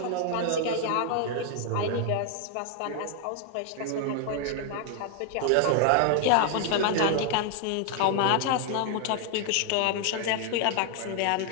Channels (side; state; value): both; different; correlation 0.00